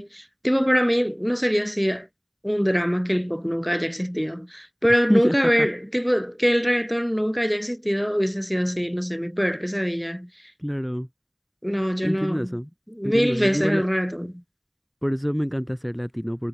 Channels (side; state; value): both; identical; correlation 1.00